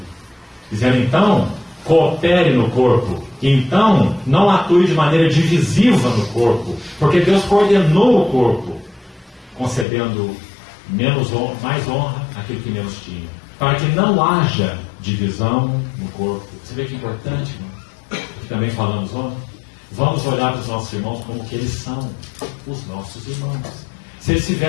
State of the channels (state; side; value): drops out; right; at 9.9 s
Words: Dizendo então coopere no corpo. Então, não atue de maneira divisiva no corpo, porque Deus coordenou o corpo, concedendo mais honra àquele que menos tinha, para que não haja divisão no corpo. Você vê que importante, irmão? Que também falamos ontem. Vamos olhar para os nossos irmãos como que eles são, os nossos irmãos. Se ele se